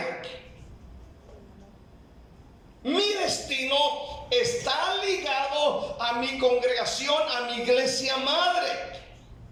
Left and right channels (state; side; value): identical; both; correlation 1.00